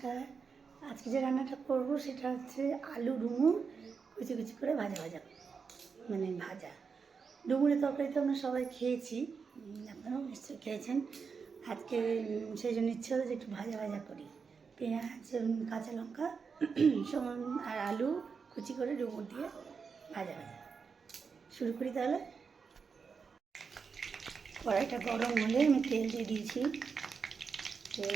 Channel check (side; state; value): left; quieter; 5.5 dB